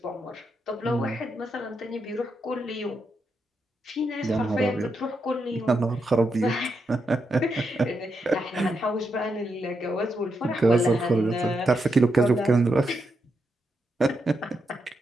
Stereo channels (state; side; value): normal; both; correlation 0.83